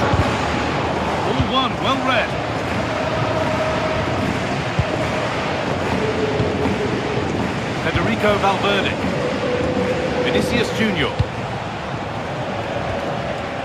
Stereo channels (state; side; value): identical; both; correlation 1.00